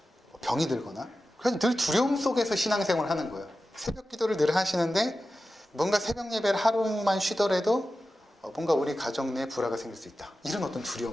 병이 들거나. 그래서 늘 두려움 속에서 신앙생활을 하는 거예요. 새벽 기도를 늘 하시는데 뭔가 새벽 예배를 하루만 쉬더라도 뭔가 우리 가정 내에 불화가 생길 수 있다. 이런 어떤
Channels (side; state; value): both; normal; correlation 0.93